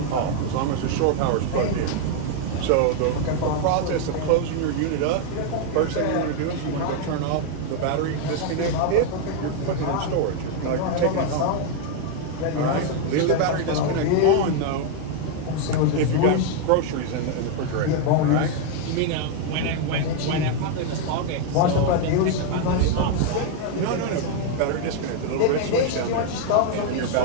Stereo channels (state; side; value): different; both; correlation 0.00